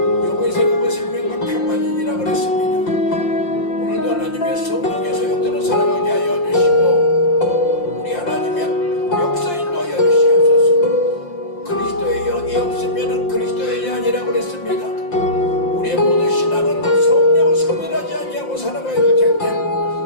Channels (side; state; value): right; late; 5.7 ms